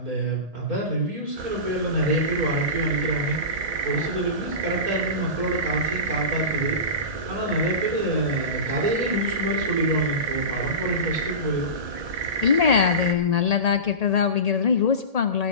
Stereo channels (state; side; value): late; left; 1.7 ms